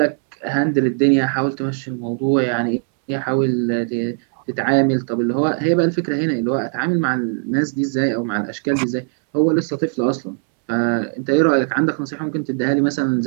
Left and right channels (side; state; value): left; silent; 66 dB below the other